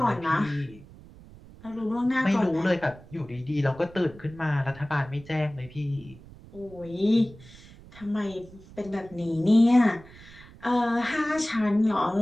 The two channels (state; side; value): noise; right; rumble, 20 dB below the sound